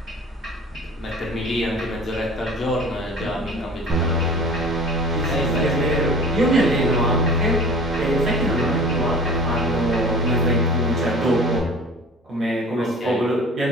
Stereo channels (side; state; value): both; normal; correlation 0.43